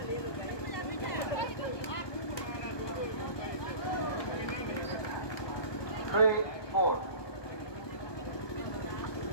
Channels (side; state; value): right; late; 1.2 ms